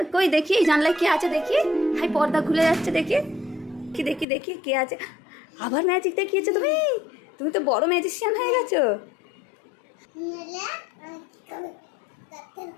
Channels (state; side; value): drops out; right; at 4.2 s